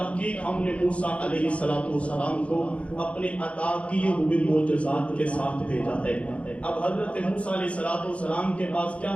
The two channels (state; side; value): late; right; 0.063 ms